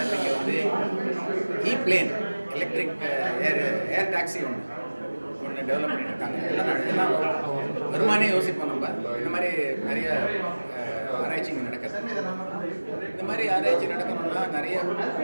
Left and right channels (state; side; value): inverted; both; correlation -1.00